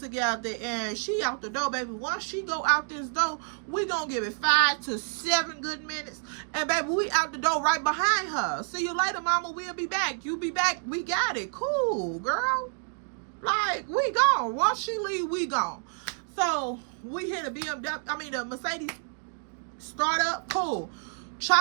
and she out the door, baby. Once she go out this door, we gonna give it 5 to 7 good minutes. And baby, we out the door right behind her. See you later, mama. We'll be back. You be back. We got it. Cool, girl. Like, we gone. Once she leave, we gone. So we hit a the Mercedes start up. Cool.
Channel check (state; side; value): silent; left; 59 dB below the other